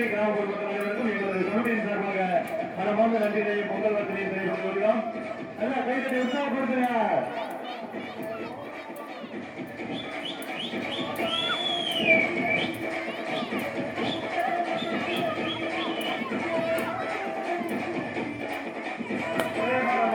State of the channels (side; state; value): both; identical; correlation 1.00